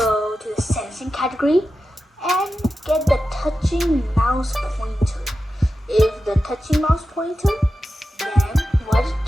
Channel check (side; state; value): both; normal; correlation 0.92